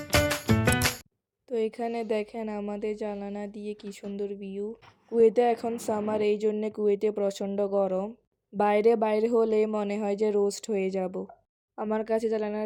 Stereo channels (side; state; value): both; identical; correlation 1.00